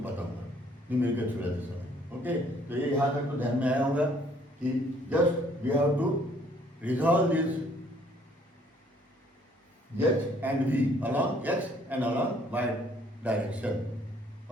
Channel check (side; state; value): both; normal; correlation 0.63